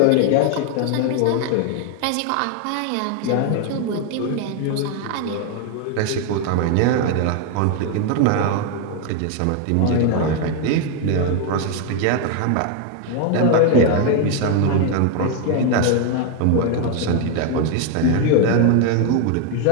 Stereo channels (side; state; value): both; different; correlation 0.01